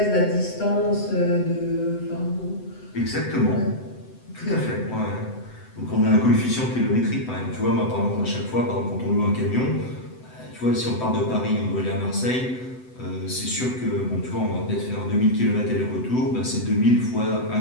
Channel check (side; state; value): right; late; 7.9 ms